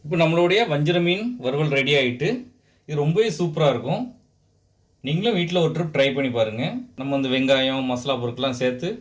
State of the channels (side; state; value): both; identical; correlation 1.00